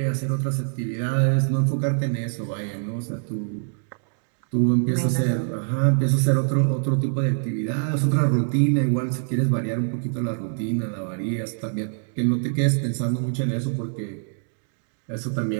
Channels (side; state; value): left; silent; digital silence